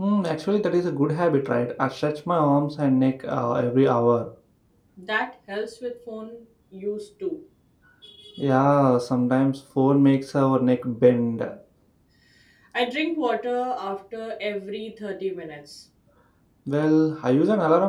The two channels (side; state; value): both; identical; correlation 1.00